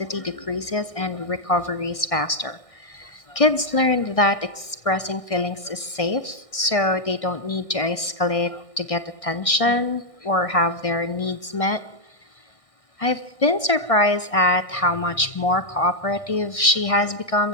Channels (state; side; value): late; right; 1.6 ms